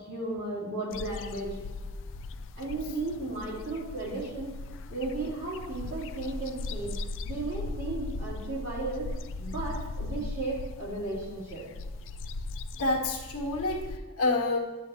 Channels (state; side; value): normal; both; correlation 0.13